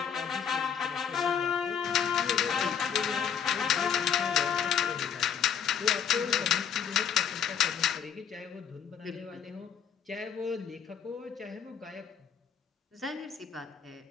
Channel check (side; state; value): right; quieter; 7.8 dB